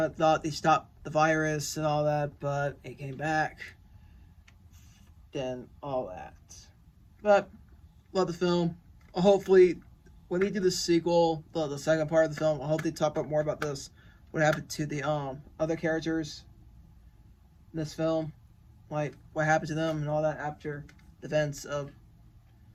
of thought they stopped the virus and all that, but it came back. Then all that, but love the film. Hopefully, when they do the sequel, the second part of the film, I hope they talk about more about this. What happened to the other characters in this film, like what happened to them and all that after the events of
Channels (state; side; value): identical; both; correlation 1.00